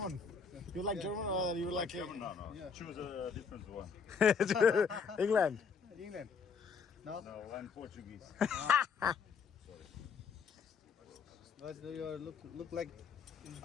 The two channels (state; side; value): quieter; right; 5.7 dB